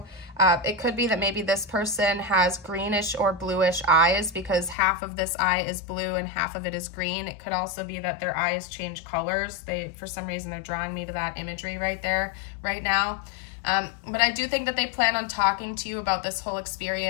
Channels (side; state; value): right; drops out; at 4.8 s